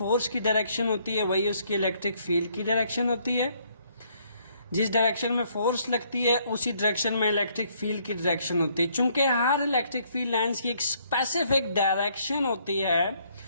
की डायरेक्शन होती है वही उसकी इलेक्ट्रिक फील्ड की डायरेक्शन होती है। जिस डायरेक्शन में फोर्स लगती है उसी डायरेक्शन में इलेक्ट्रिक फील्ड की डायरेक्शन होती है। चूंकि हर इलेक्ट्रिक फील्ड लाइंस की एक स्पेसिफिक डायरेक्शन होती है,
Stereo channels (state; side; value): inverted; both; correlation -0.67